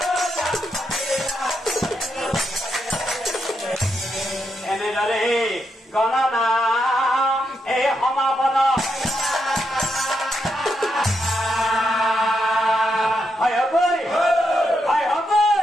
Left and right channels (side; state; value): both; normal; correlation 0.82